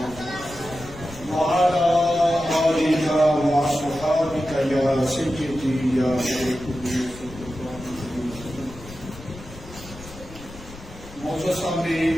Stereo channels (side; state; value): left; noise; rumble, 17 dB below the sound